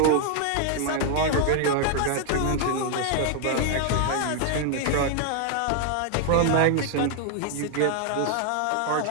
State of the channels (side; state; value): both; different; correlation 0.00